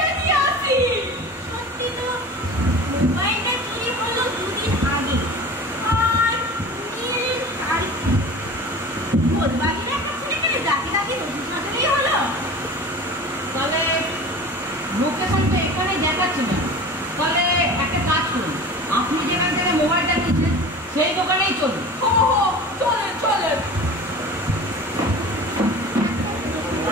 নিয়েছি। সত্যি তো, মোবাইলটা চুরি হলো দুদিন আগে, আর ভোরবাগিরে একটা ছেলেকে যাকে তাকে রসিদ সাজালেই হলো। তাহলে লোকেশন তো এখানে দেখাচ্ছে না। তাহলে একটা কাজ করুন, আপনি যেখান থেকে মোবাইলটা নিচ্ছেন সেই দোকানেই চলুন। হো হো, চলেন চলেন।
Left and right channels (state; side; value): normal; both; correlation 0.37